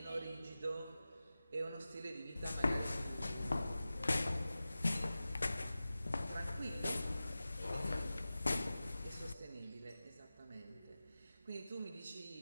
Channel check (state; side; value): inverted; both; correlation -0.95